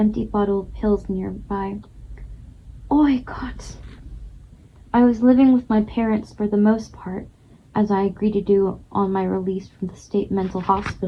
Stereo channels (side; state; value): both; identical; correlation 1.00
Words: bottle of pills nearby. Oi, Gott! I was living with my parents for the most part, as I agreed to do on my release from the state mental